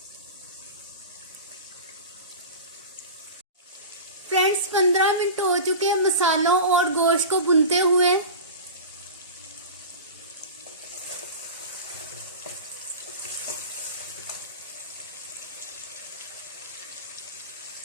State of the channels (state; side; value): inverted; both; correlation -0.31